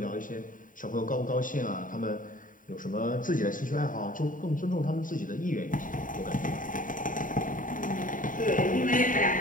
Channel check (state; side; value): late; right; 0.39 ms